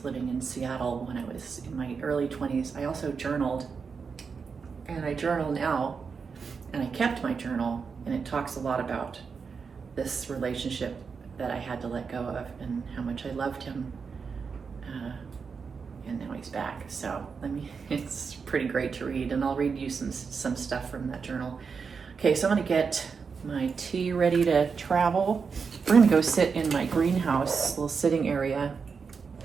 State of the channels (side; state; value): left; quieter; 5.6 dB